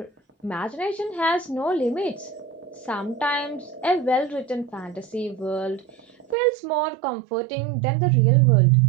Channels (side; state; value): left; drops out; at 6.4 s